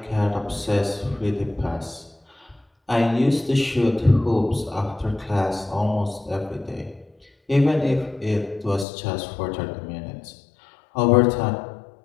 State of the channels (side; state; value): right; drops out; at 8.8 s